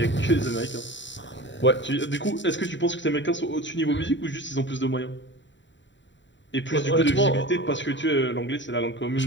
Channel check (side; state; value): right; late; 0.54 ms